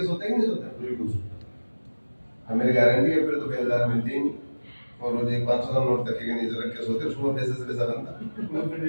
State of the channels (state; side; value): inverted; both; correlation -1.00